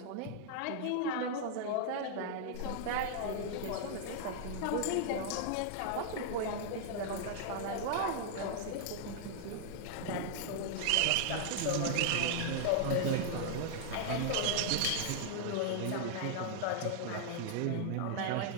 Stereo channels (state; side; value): different; both; correlation -0.01